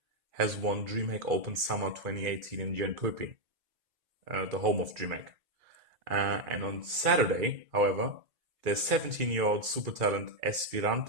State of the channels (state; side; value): late; left; 2.3 ms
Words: has won DreamHack Open Summer 2018 in Jönköping, the home of DreamHack. And on Saturday, however, the 17-year-old super talent